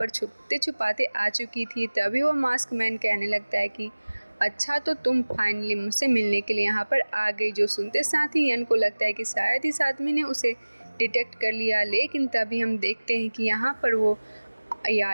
छुपते छुपाते आ चुकी थी। तभी वो मास्क मैन कहने लगता है कि अच्छा, तो तुम फाइनली मुझसे मिलने के लिए यहाँ पर आ गई। जो सुनते साथ ही यन को लगता है कि शायद इस आदमी ने उसे डिटेक्ट कर लिया, लेकिन तभी हम देखते हैं कि यहाँ पर वो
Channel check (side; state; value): both; inverted; correlation -1.00